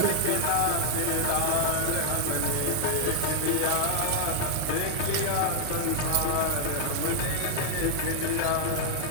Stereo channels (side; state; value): both; different; correlation 0.00